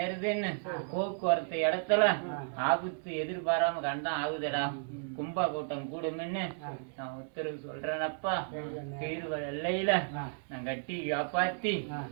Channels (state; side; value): silent; left; digital silence